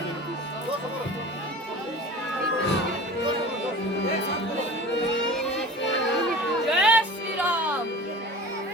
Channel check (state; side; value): normal; both; correlation 0.37